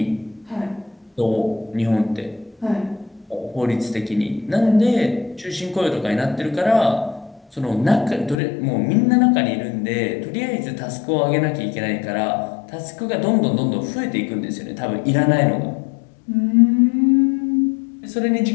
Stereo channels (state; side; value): drops out; right; at 8.3 s